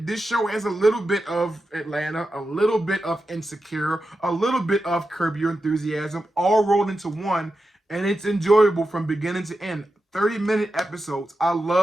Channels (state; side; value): normal; both; correlation 0.90